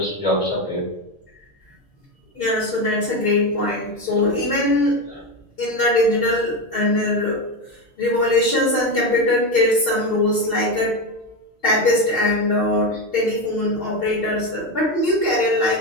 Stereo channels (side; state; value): both; normal; correlation 0.14